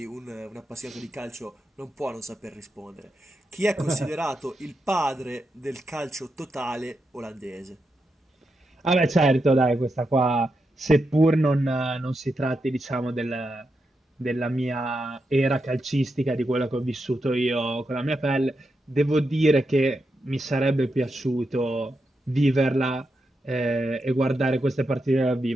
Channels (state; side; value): normal; both; correlation 0.86